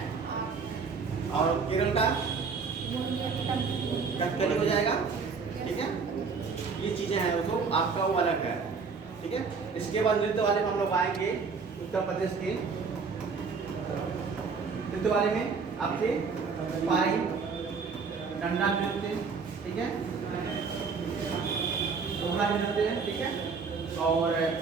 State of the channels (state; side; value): quieter; left; 5.1 dB